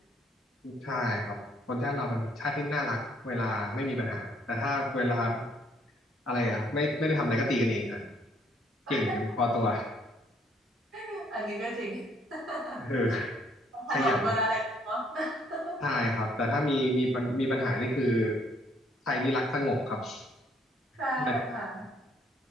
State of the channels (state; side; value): normal; both; correlation 0.67